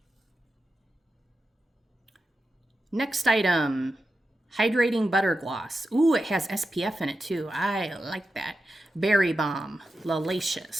Next item, hydrating butter gloss. Ooh, it has SPF in it too. I like that. Berry Balm,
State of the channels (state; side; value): normal; both; correlation 0.90